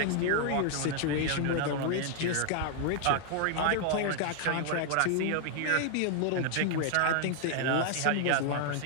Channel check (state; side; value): different; both; correlation 0.00